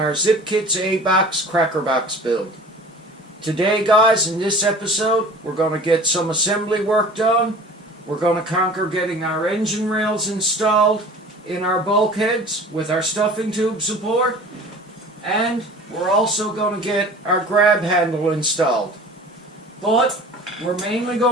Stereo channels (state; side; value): normal; both; correlation 0.43